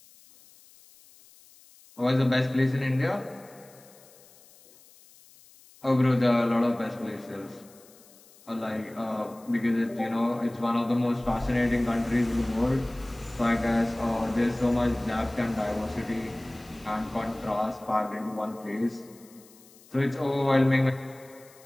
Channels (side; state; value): left; noise; hiss, 25 dB below the sound